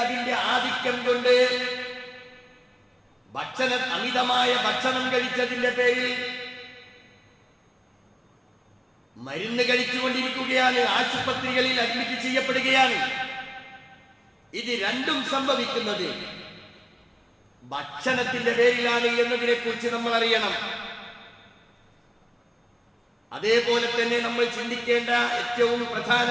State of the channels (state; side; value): identical; both; correlation 1.00